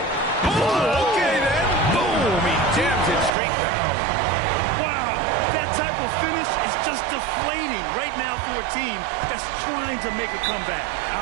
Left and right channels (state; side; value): drops out; left; at 3.3 s